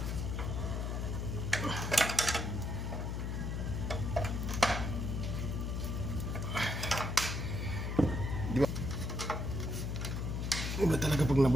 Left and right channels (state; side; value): noise; left; hum, 2 dB below the sound